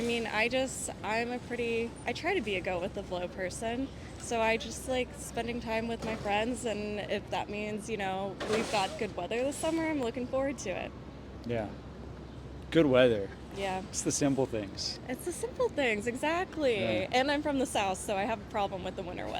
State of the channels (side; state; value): both; identical; correlation 1.00